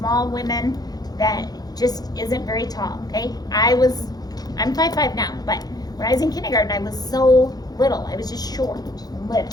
women that just isn't very tall, okay? I'm 5'5" now, but when I was in kindergarten, I was so little. I was just short and little.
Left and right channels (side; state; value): right; late; 0.19 ms